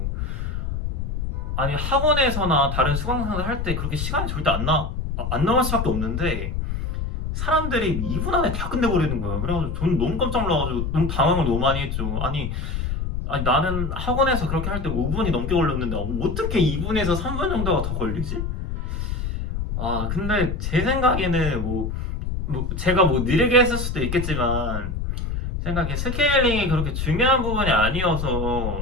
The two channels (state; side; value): noise; left; rumble, 3 dB below the sound